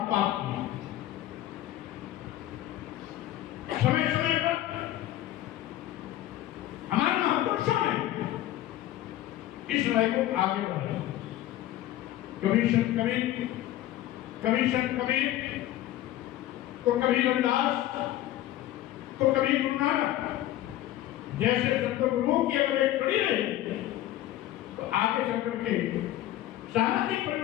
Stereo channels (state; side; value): quieter; right; 14.1 dB